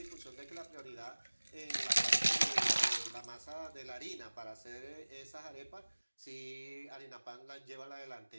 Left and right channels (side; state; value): both; inverted; correlation -1.00